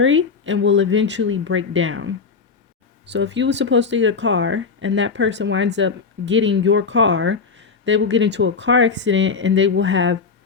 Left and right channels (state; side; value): quieter; right; 5.1 dB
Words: and will eventually break down. So if you were supposed to get a car and that person winds up getting your car, they will get into a car accident and they will have